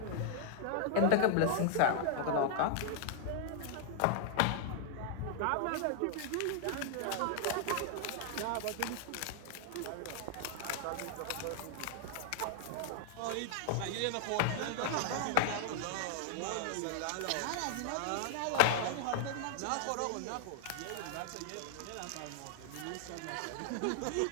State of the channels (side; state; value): both; different; correlation -0.01